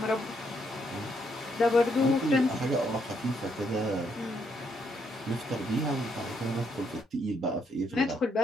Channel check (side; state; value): both; normal; correlation 0.74